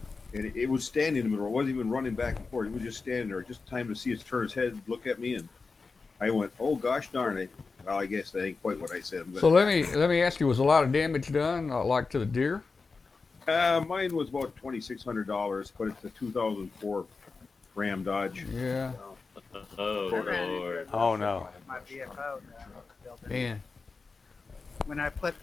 and it was standing in the middle. It wasn't even running back and forth. It was just standing there, just time to see it turn its head, look at me, and I went, "Oh gosh darn it!" Well, I guess that ain't quite what I said. But, So let me ask you: was a lot of damage done, like to the deer? mine was about $2,600, but it's a 2004 Ram Dodge. Yeah, Oh, I ran into Lord. it Oh no. with my VFO that I built in. man. When I put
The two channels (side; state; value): right; quieter; 4.4 dB